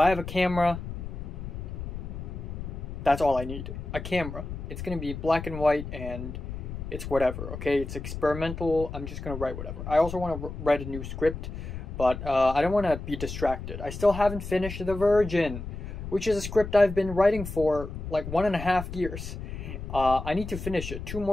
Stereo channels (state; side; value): noise; left; rumble, 8 dB below the sound